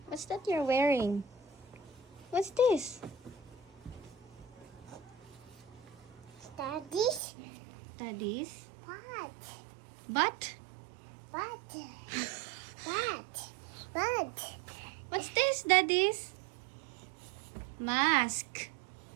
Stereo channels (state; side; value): drops out; left; at 7.2 s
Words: What's that you're wearing? What's this? Daddy's Daddy's? butt. Butt? Butt. Butt. Butt. What's this, Daddy's? Mask.